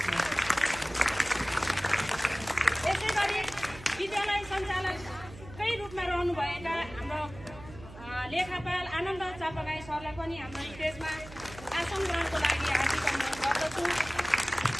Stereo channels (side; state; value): right; noise; hum, 16 dB below the sound